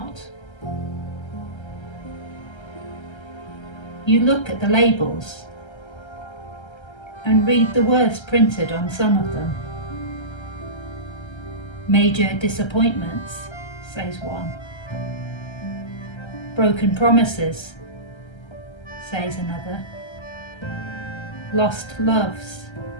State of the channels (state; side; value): late; right; 1.3 ms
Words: You look at the labels and read the words printed on some of them. Major disappointments, says one. Broken promises, says another. Lost loves,